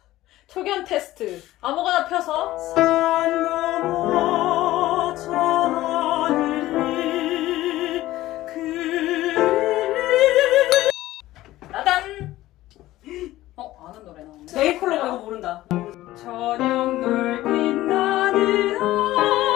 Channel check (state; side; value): quieter; right; 16.0 dB